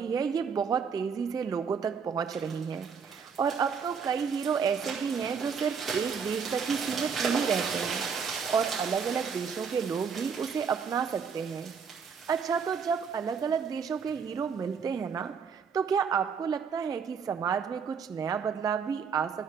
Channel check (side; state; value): left; quieter; 6.2 dB